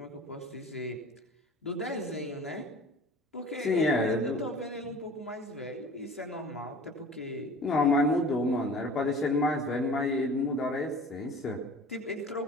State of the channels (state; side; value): normal; both; correlation 0.43